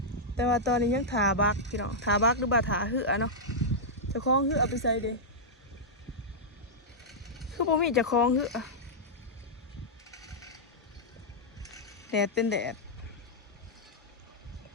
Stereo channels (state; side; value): normal; both; correlation -0.08